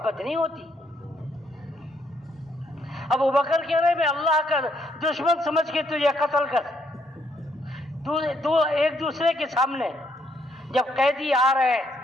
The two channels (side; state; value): both; normal; correlation 0.72